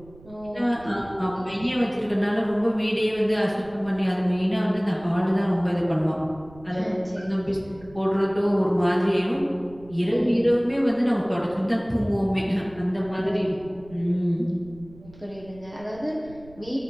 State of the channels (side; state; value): right; noise; rumble, 22 dB below the sound